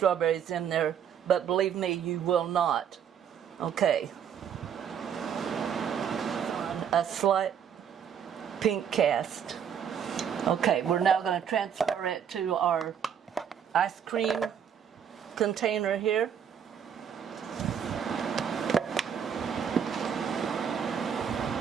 in there, but believe me, you will not. Okay. A slight pink cast. Okay, we're now going to transfer it to our ice cream container here.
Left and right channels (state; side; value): quieter; left; 8.1 dB